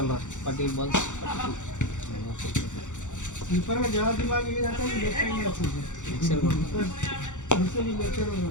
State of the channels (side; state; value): right; late; 0.85 ms